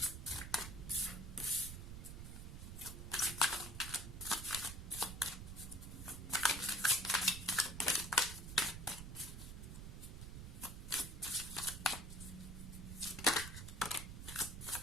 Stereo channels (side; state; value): right; noise; rumble, 8 dB below the sound